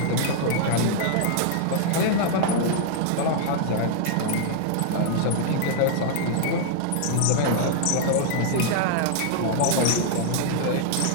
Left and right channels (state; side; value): different; both; correlation 0.00